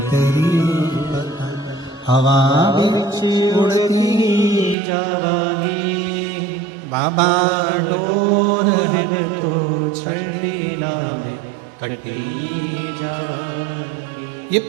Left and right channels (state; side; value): drops out; left; at 4.8 s